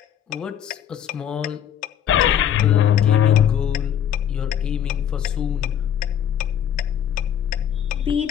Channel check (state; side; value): quieter; right; 9.6 dB